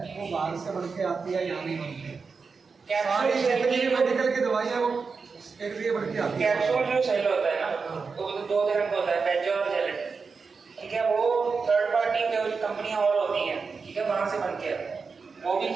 वो बाहर से बन के आती है, यहाँ नहीं बनती है। सारी कैप्सूल जितनी मेडिकल की दवाइयाँ वो एक लिए बढ़ के आती है। कैप्सूल जो सेल होता है ना, वो 2 तरह का होता है, बेज और जेलेटिन, ठीक है, वो थर्ड पार्टी कंपनियां और होती हैं, ठीक है, वहां से बन के आता है, वो भी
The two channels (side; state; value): left; quieter; 4.9 dB